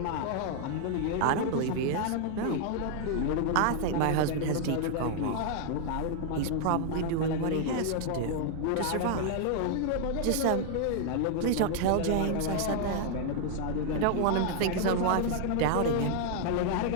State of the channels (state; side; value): different; both; correlation 0.00